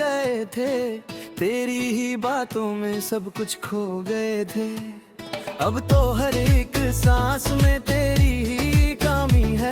थे, तेरी ही बातों में सब कुछ खो गए थे। अब तो हर एक सांस में तेरी ही कमी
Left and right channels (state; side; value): identical; both; correlation 1.00